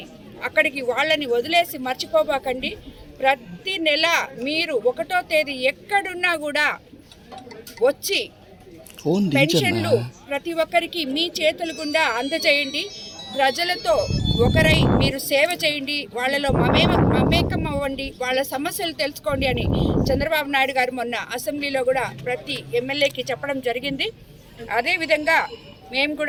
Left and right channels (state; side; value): identical; both; correlation 1.00